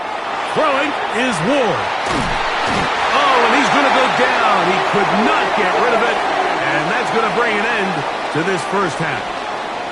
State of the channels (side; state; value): both; identical; correlation 1.00